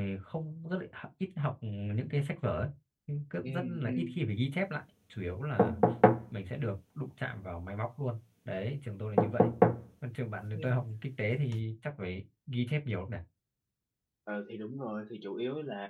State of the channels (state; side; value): identical; both; correlation 1.00